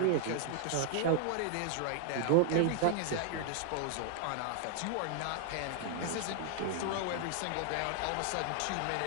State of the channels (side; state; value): both; different; correlation 0.00